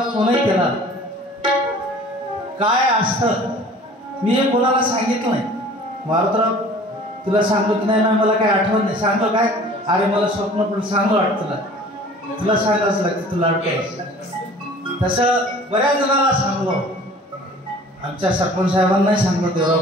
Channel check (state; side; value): normal; both; correlation 0.47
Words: फोनही केला. काय असतं मी हे कोणाला सांगितलं नाही. मारुतराव तुला सांगतो की नाही, मला काय आठवत नाही. सांगतो काय, अरे मला स्वप्न पण चांगलं वाटतं, तुला सांगायचं लागतं, तुला आठवत. तसं बऱ्याच जणांना सांगलो. आमच्या सरपंच साहेबांनाही सांगलो, देवराव